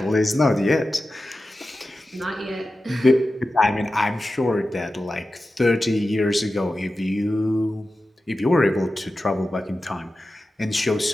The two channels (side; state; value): both; normal; correlation 0.93